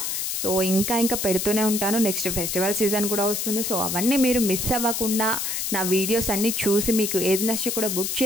సో ఇంకా పెడుతూనే ఉంటాను. నెక్స్ట్ ఫెస్టివల్ సీజన్ కూడా వస్తుంది. సో అవన్నీ మీరు మిస్ అవ్వకుండా నా వీడియోస్ అన్నీ చూసి మీకు ఏది నచ్చి కూడా బుక్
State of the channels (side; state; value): left; noise; hiss, 2 dB below the sound